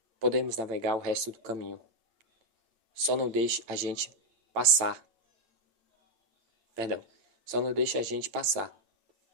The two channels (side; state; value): left; late; 9.0 ms